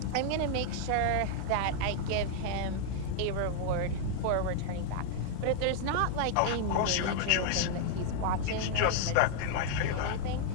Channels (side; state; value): both; different; correlation 0.00